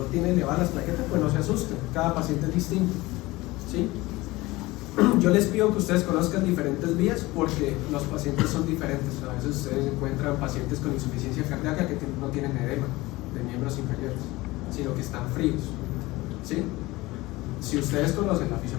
tiene elevadas las plaquetas, pues no se asusten, cada paciente es distinto. ¿Sí? Yo les pido que ustedes conozcan diferentes vías porque los pacientes son diferentes. A veces ustedes encuentran pacientes con insuficiencia cardíaca que no tienen edema de miembros inferiores, sino que están fríos. ¿Sí? Si ustedes conocen la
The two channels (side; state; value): right; quieter; 20.2 dB